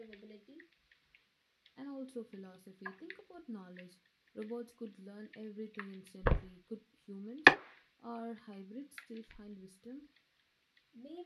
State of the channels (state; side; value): identical; both; correlation 1.00